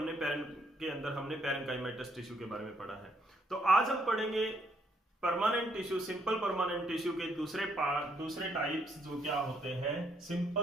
के अंदर हमने पैरेन्काइमेटस टिश्यू के बारे में पढ़ा है। तो आज हम पढ़ेंगे permanent tissue, simple permanent tissue के दूसरे टाइप्स जो क्या होते हैं,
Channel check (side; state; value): both; normal; correlation 0.72